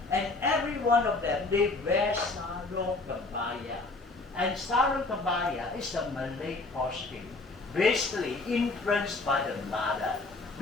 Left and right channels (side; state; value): right; quieter; 3.4 dB